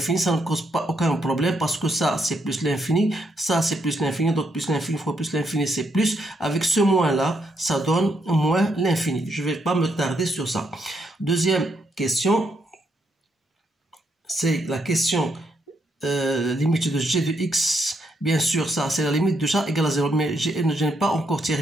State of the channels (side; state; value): both; normal; correlation 0.77